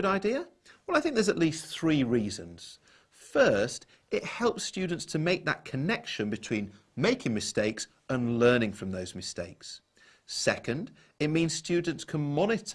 idea? Well, I think there's at least 3 reasons. First, it helps students to make that connection between making mistakes and learning from those mistakes. Second, it means students can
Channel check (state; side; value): identical; both; correlation 1.00